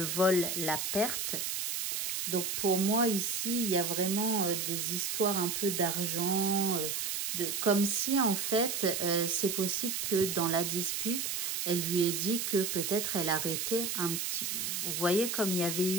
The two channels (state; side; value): noise; right; hiss, 1 dB below the sound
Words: vol, la perte. Donc, pour moi, ici, il y a vraiment des histoires un peu d'argent, comme si, en fait, c'est possible que dans la dispute, elle lui ait dit que peut-être elle arrêtait un petit... Vous voyez, comme il y avait